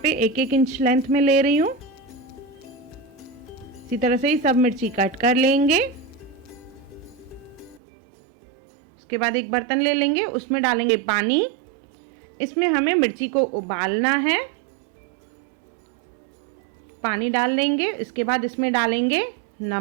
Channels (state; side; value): drops out; left; at 7.8 s